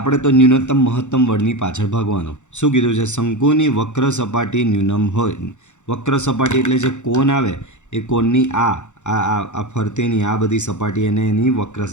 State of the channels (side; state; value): right; late; 0.84 ms